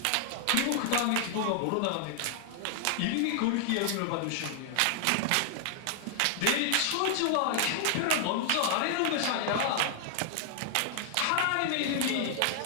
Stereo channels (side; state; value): both; different; correlation 0.00